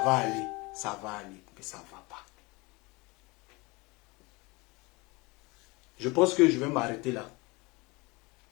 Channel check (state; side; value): quieter; right; 25.1 dB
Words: va aller, ça va aller, mais ça ne va pas. Je pense que je vais m'arrêter là.